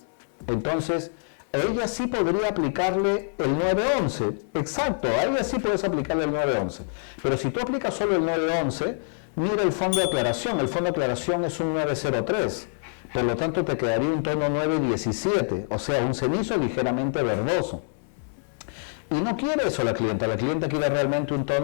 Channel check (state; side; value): silent; right; 61 dB below the other